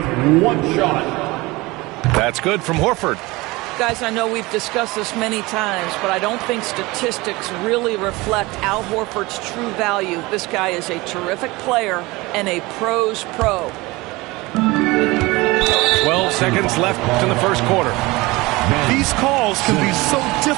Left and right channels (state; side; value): quieter; left; 22.1 dB